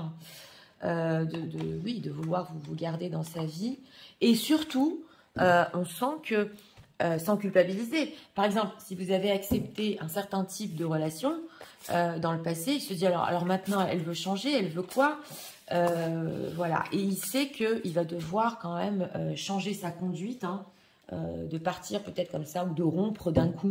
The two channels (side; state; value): both; identical; correlation 1.00